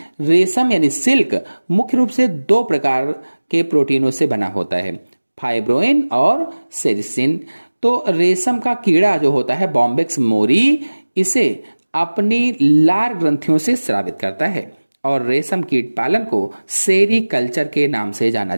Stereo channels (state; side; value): inverted; both; correlation -1.00